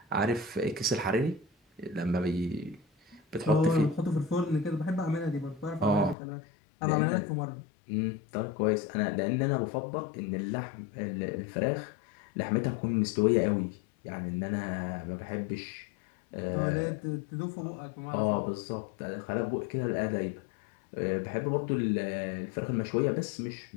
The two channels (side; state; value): right; drops out; at 6.2 s